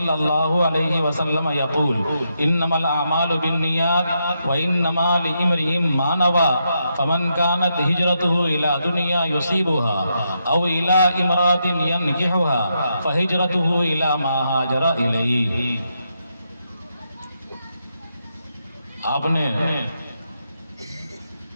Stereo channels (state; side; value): inverted; both; correlation -0.82